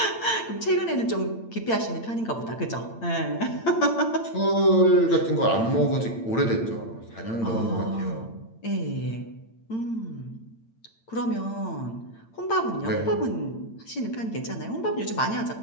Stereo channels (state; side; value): late; right; 8.8 ms